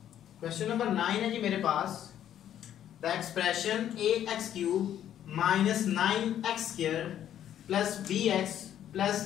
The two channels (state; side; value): quieter; right; 10.7 dB